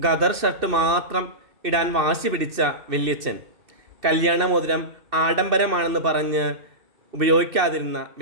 ഗദർ ഷർട്ട് മാത്രം ഇടാൻ വാശി പിടിച്ച വല്യച്ഛൻ, കല്യാണമോതിരം ആഡംബരമാണെന്ന് പറഞ്ഞ് ഉപയോഗിക്കാതിരുന്ന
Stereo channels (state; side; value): late; left; 2.6 ms